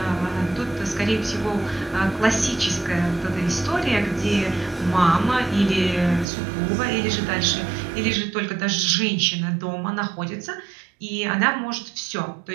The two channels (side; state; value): left; drops out; at 6.2 s